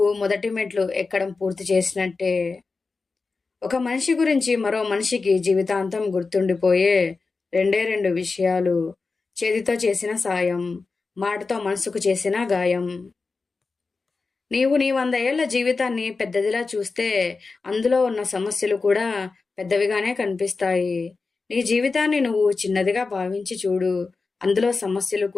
మొదటి మెట్లు ఎక్కడం పూర్తి చేసినట్టే. ఒక మనిషి గురించి మరో మనిషికి జీవితాంతం గుర్తుండిపోయే రెండే రెండు విషయాలు: చేతితో చేసిన సాయం, మాటతో మనసుకు చేసిన గాయం. నీవు నీ 100 ఏళ్ల జీవితాన్ని పెద్దదిలా చూస్తే అందులో ఉన్న సమస్యలు కూడా పెద్దవిగానే కనిపిస్తాయి. నీ జీవితాన్ని నువ్వు చిన్నదిగా భావించి చూడు, అందులో సమస్యలు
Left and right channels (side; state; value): right; quieter; 4.2 dB